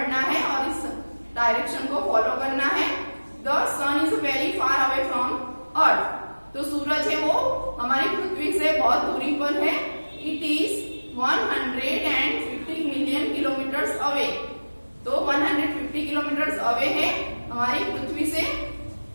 है और इस डायरेक्शन को फॉलो करना है। The sun is very far away from earth। तो सूरज है वो हमारी पृथ्वी से बहुत दूरी पर है। It is 150 million kilometres away. तो 150 किलोमीटर्स अवे है हमारी पृथ्वी से।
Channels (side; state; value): both; inverted; correlation -1.00